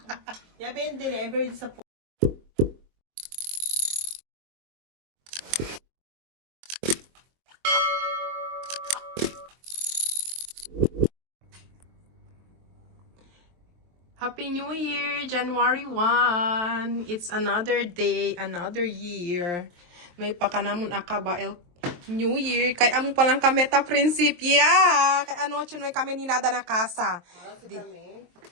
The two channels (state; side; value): late; left; 23 ms